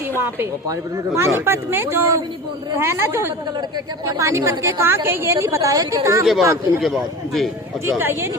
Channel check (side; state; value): both; normal; correlation 0.33